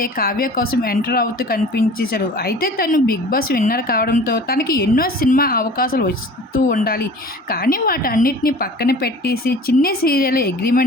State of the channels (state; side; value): normal; both; correlation 0.43